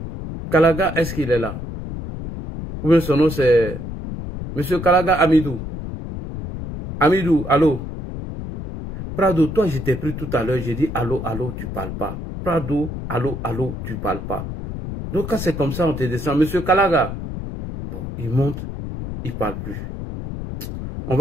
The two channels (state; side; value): noise; left; rumble, 7 dB below the sound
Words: Kalaga, est-ce qu'il est là? Ou bien son nom c'est... Monsieur Kalaga Amidou. Amidou, allô. Prado, toi je t'ai pris tout à l'heure, j'ai dit allô, allô, tu parles pas. Prado, allô, allô, tu parles pas. Donc quand c'est comme ça, on te descend. Monsieur Kalaga. Bon, il monte, il parle plus. On